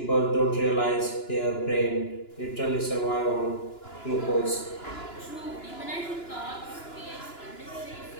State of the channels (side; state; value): right; late; 2.9 ms